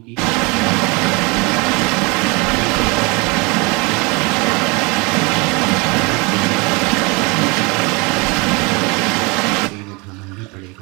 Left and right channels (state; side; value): quieter; left; 27.9 dB